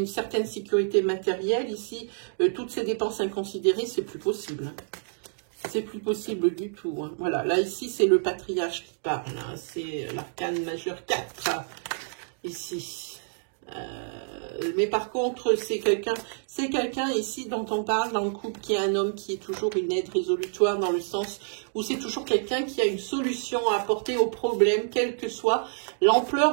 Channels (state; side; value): silent; left; digital silence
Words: certaine sécurité matérielle, ici, toutes ces dépenses inconsidérées, c'est plus possible. Hein. C'est plus possible du tout. Hein. Voilà, là, ici, c'est le patriarche qui parle. Hein. C'est l'arcane majeur 4, ici. Mais par contre, c'est quelqu'un ici dont on parle dans le couple qui est un homme qui est toujours une aide résolutoire dans le sens où c'est toujours quelqu'un qui a une solution à apporter au problème, quelle que soit